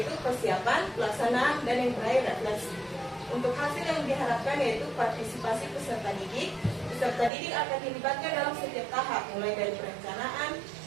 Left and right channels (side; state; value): left; drops out; at 7.3 s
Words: persiapan, pelaksanaan, dan yang terakhir refleksi. Untuk hasil yang diharapkan yaitu partisipasi peserta didik. Peserta didik akan dilibatkan dalam setiap tahap, mulai dari perencanaan,